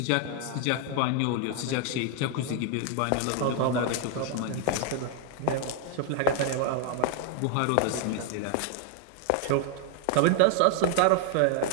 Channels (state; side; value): different; both; correlation 0.00